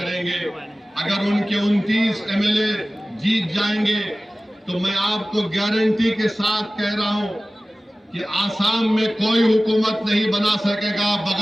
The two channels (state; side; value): normal; both; correlation 0.97